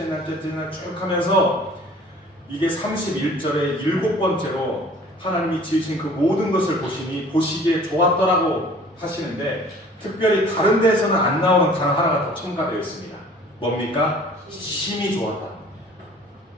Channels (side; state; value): both; normal; correlation 0.50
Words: 날, 넷째 날 쭉 하면서 이게 31절에 7번째로 하나님이 지으신 그 모든 것을 보시기에 좋았더라고 하시는데, 특별히 다른 데에서는 안 나오는 단어 하나가 더 첨가되어 있습니다. 뭡니까? 심히 좋았다.